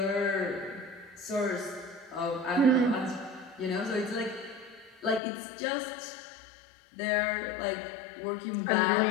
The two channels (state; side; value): drops out; right; at 5.2 s